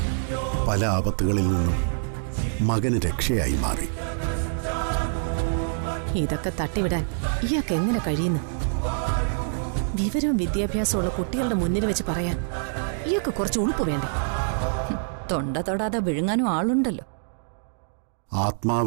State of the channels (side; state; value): left; silent; digital silence